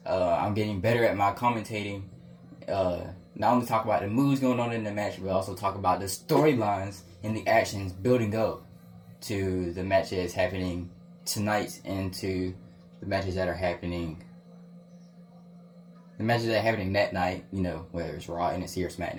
I'm getting better at my commentating. Not only talk about the moves going on in the match, but also talk about the storylines and the actions building up to the match that is happening tonight and to the matches that are happening. The matches that are happening that night, you know, whether it's Raw, NXT, or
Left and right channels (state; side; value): identical; both; correlation 1.00